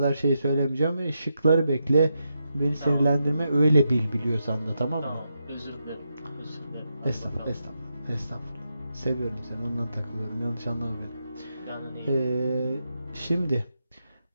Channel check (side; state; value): both; inverted; correlation -0.84